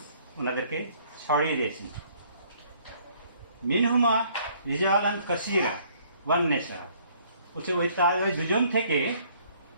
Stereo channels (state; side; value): inverted; both; correlation -0.61